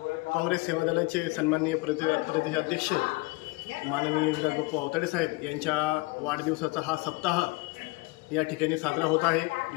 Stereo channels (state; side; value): quieter; right; 24.7 dB